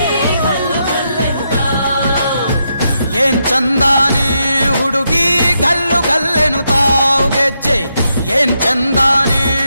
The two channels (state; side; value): inverted; both; correlation -0.82